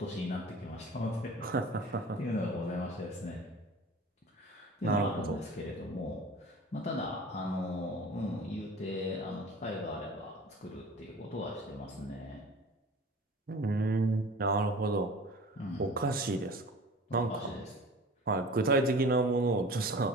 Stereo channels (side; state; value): both; normal; correlation 0.41